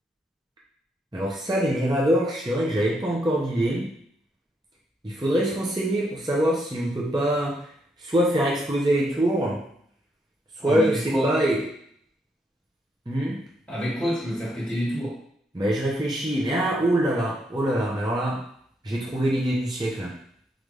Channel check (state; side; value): normal; both; correlation 0.77